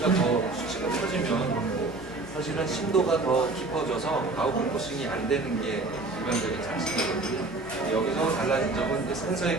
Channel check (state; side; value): quieter; left; 3.3 dB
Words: 커지면 사실은 심도가 더 깊어져서 아웃포커싱이 안 되는 게 일반적인 상식이거든요. 여기서 달라진 점은